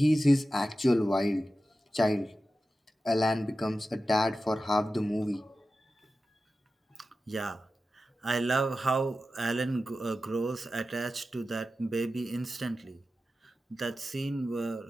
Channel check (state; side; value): normal; both; correlation 0.93